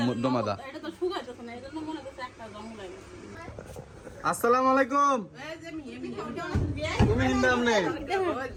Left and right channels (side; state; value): both; identical; correlation 1.00